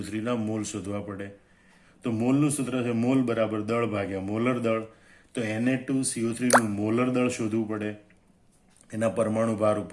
મોલ શોધવા પડે. તો મોલનું સૂત્ર છે મોલ બરાબર દળ ભાગ્યા મોલર દળ. તો Na2CO3નું મોલર દળ શોધવું પડે એના પરમાણુ ભાર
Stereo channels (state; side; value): identical; both; correlation 1.00